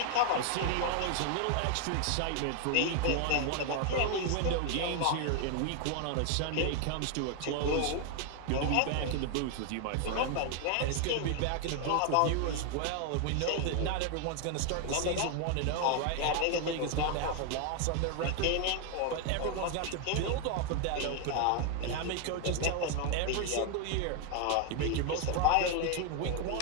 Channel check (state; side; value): different; both; correlation 0.00